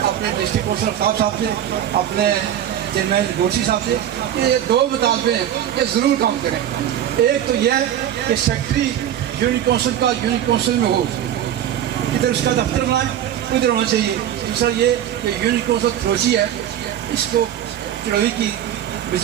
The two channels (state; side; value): quieter; left; 10.8 dB